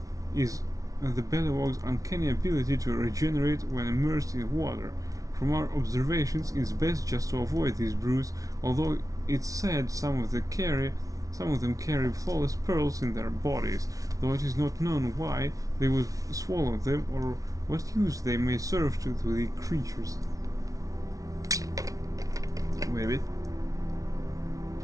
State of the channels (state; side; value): late; left; 0.17 ms